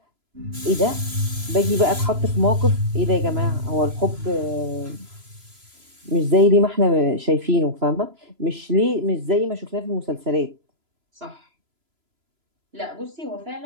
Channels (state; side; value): late; left; 3.0 ms